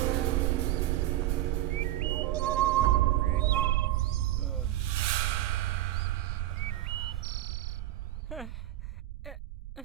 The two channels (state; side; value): quieter; left; 14.5 dB